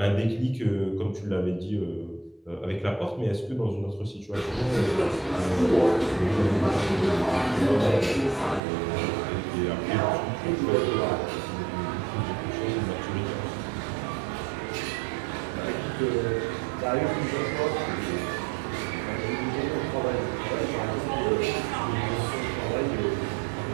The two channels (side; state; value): left; drops out; at 8.6 s